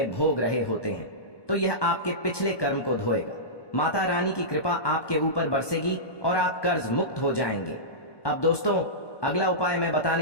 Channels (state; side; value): late; right; 1.2 ms